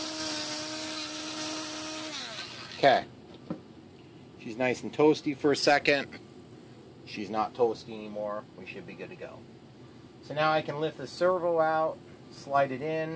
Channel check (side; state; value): both; identical; correlation 1.00